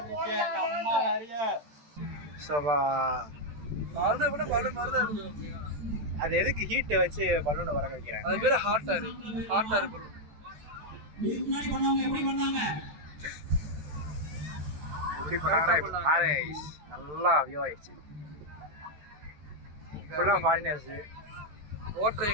அது எதுக்கு ஹீட் வச்சு பலூனை பறக்க வைக்கிறேன்? அது பேரு hot air. Hot air balloon. எப்படி பண்ணாங்கன்னா இப்போ பாரு நல்லா வியூ ஆயிடுச்சு. ஃபுல்லாக ஃபாரினர்ஸ்.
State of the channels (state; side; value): late; left; 13 ms